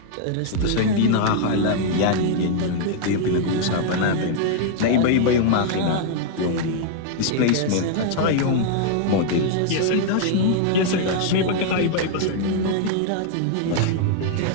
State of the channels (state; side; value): different; both; correlation -0.01